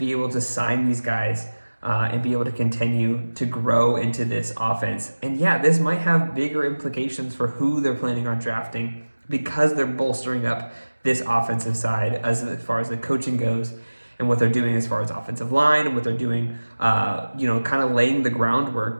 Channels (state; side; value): inverted; both; correlation -1.00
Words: able to sign these guys and be able to continue to grow into this offense. And yeah, this might have bigger implications for who they're planning on drafting because they're bolstering up this offensive side as far as the coaching goes and what they're doing as far as offensive line and what they're doing, kind of laying the groundwork